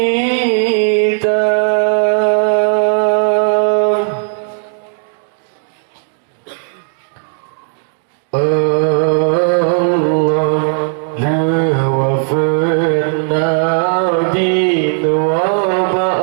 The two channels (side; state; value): left; silent; 69 dB below the other